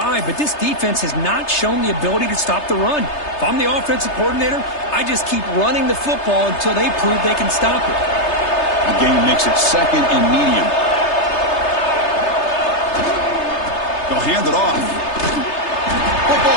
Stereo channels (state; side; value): late; right; 3.3 ms